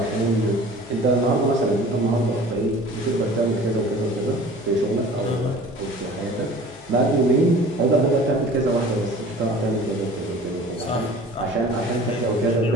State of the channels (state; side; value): noise; left; hum, 26 dB below the sound